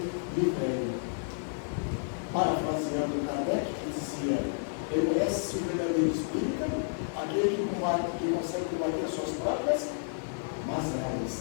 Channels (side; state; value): right; silent; digital silence